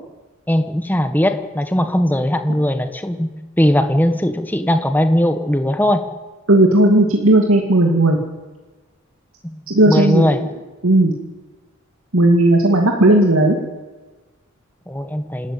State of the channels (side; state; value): both; normal; correlation 0.63